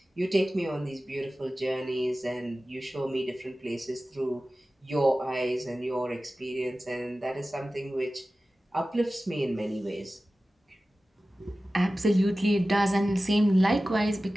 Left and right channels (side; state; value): both; normal; correlation 0.96